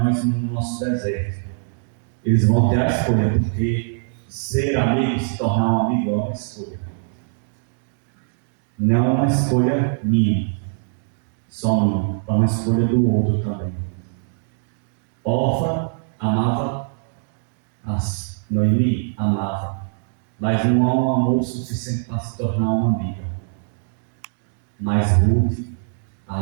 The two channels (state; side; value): silent; left; digital silence